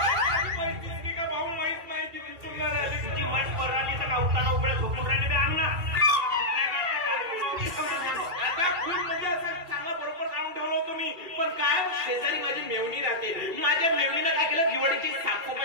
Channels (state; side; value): late; left; 2.3 ms